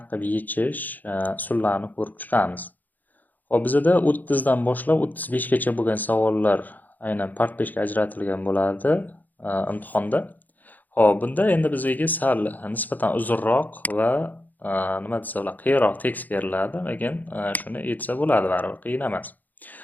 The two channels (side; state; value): right; late; 0.083 ms